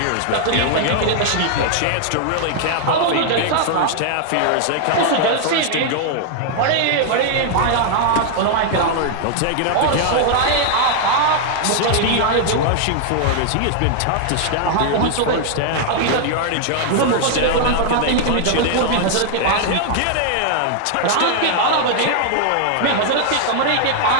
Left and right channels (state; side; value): different; both; correlation 0.00